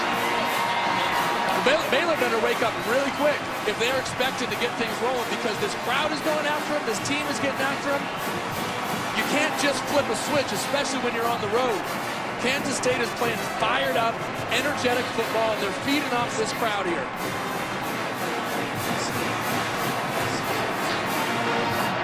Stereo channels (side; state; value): both; identical; correlation 1.00